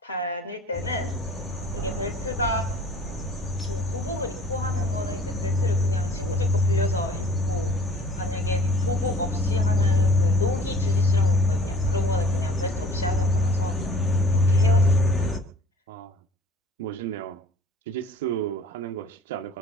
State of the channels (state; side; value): normal; both; correlation 0.50